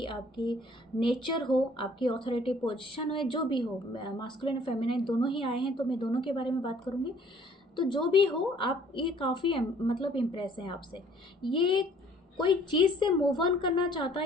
आपकी नेचर हो, आपकी ऑथोरिटी पोजीशन हो, जो भी हो, मास्कुलिन और फेमिनिन दोनों ही आए हैं, तो मैं दोनों के बारे में बात करूँगी। तो जो भी हो, आप ये काफ़ी मतलब इम्प्रेस हैं आपसे। ये कोई चीज़ से मूव ऑन करना चाहता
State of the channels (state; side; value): normal; both; correlation 0.57